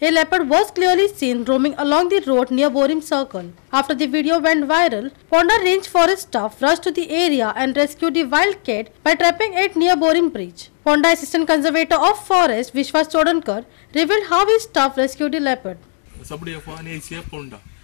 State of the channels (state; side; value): silent; right; digital silence